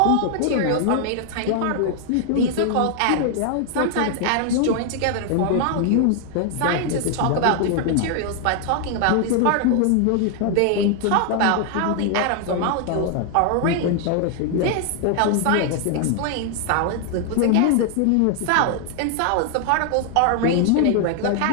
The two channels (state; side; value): different; both; correlation 0.00